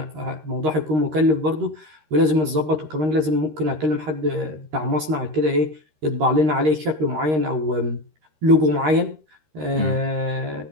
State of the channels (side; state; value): left; late; 13 ms